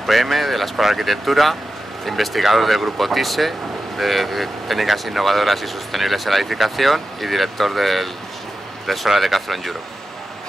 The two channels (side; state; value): both; normal; correlation 0.93